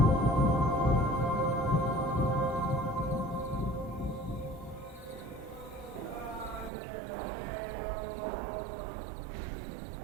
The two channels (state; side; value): drops out; left; at 6.7 s